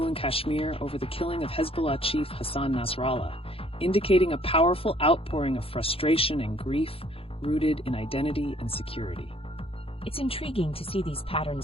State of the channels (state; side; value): late; right; 0.27 ms